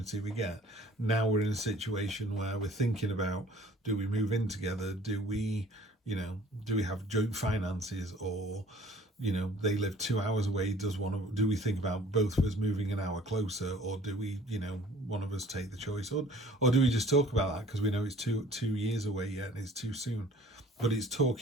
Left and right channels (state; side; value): normal; both; correlation 0.51